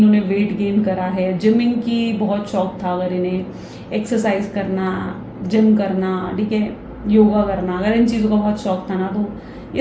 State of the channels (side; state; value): both; identical; correlation 1.00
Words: वेट गेन करा है, जिमिंग की बहुत शौक था अगर इन्हें, एक्सरसाइज करना, जिम करना, ठीक है, योगा करना, अगर इन चीज़ों का बहुत शौक था ना, तो